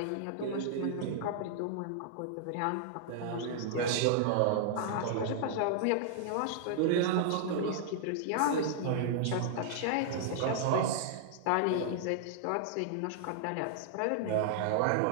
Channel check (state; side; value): different; both; correlation -0.01